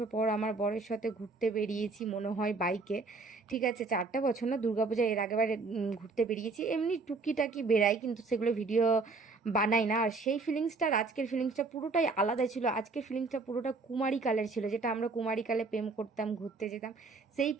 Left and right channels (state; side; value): quieter; left; 3.9 dB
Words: পর আমার বরের সাথে ঘুরতে বেরিয়েছি, মনে হয় বাইকে। ঠিক আছে, 4টা বছর না, দুর্গাপূজা এর আগেবারে ঘুরতে বেরিয়েছি। এমনি টুকিটাকি বেড়াই, কিন্তু সেগুলো ভিডিও বানাই না। আর সেই ফিলিংসটা আর আজকের ফিলিংসটা পুরোটাই আলাদা ছিল। আজকের ফিলিংসটা পুরোটা কুমারীকালের ছিল, যেটা আমরা কুমারীকালে প্রেম করতাম, ঘুরতে যেতাম, সেই